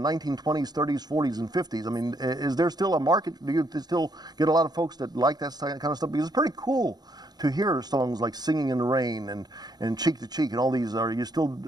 30s, 40s, and 50s. I mean, is there still a market? Do you still get a lot of folks that like that kind of stuff? Because it's pretty cool to hear songs like Singing in the Rain and Cheek to Cheek and all these. Are you still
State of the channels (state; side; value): late; left; 0.19 ms